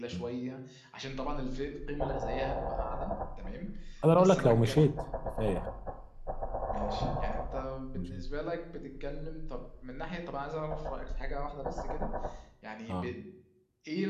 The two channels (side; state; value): both; identical; correlation 1.00